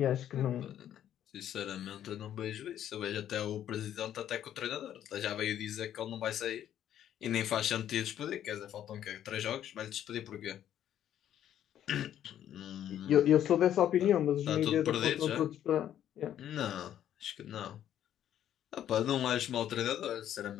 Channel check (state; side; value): quieter; right; 10.8 dB